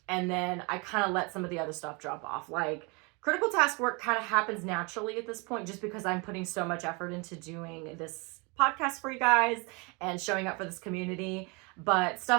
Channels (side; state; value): left; quieter; 29.9 dB